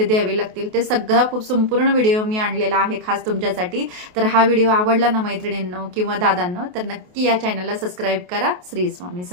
द्यावे लागतील, ते सगळा खूप संपूर्ण व्हिडिओ मी आणलेला आहे खास तुमच्यासाठी। तर हा व्हिडिओ आवडला ना मैत्रिणींनो किंवा दादांनो, तर नक्की या चॅनलला सबस्क्राईब करा। श्री स्वामी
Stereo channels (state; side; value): late; left; 28 ms